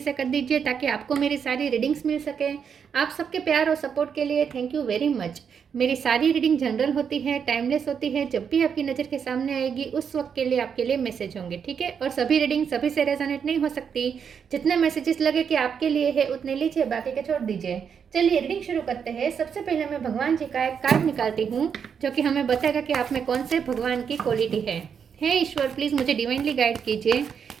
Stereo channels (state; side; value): quieter; left; 7.1 dB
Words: कर दीजिए ताकि आपको मेरी सारी रीडिंग्स मिल सके। आप सबके प्यार और सपोर्ट के लिए थैंक यू वेरी मच। मेरी सारी रीडिंग जनरल होती है, टाइमलेस होती है। जब भी आपकी नज़र के सामने आएगी उस वक्त के लिए आपके लिए मैसेज होंगे, ठीक है। और सभी रीडिंग सभी से रेजोनेट नहीं हो सकती। जितने मैसेजेस लगे कि आपके लिए है उतने लीजिए, बाकी के छोड़ दीजिए। चलिए रीडिंग शुरू करते हैं। सबसे पहले मैं भगवान जी का एक कार्ड निकालती हूँ जो कि हमें बताएगा कि आप में कौन से भगवान की क्वालिटी है। हे ईश्वर, प्लीज़ मुझे डिवाइनली गाइड कीजिए।